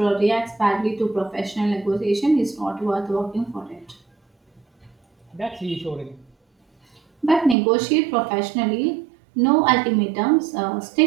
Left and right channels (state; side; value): drops out; left; at 7.6 s